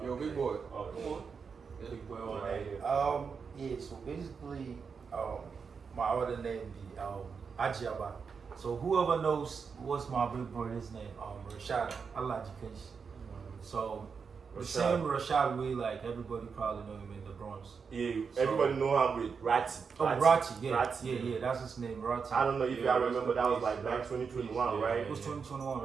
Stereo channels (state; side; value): quieter; left; 5.7 dB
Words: Yo, big boy. Oh, Come on. Big boy Right here. yeah, so basically, my other name be Ajiaba. So whoever knows what's my big brother's name, Rashad, Allah Jikensh. So the same Rashad way, like everybody probably know him in the Bronx. Yeah, everybody know him with Ratty. Oh, Ratty, yeah, Ratty. yeah, that's his name, Ratty. I don't know if y'all remember, that was like back 2021, right? It was 2021,